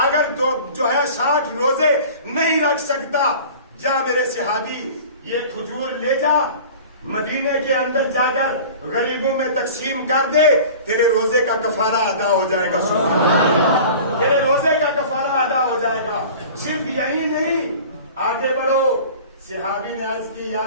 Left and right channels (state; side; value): inverted; both; correlation -0.41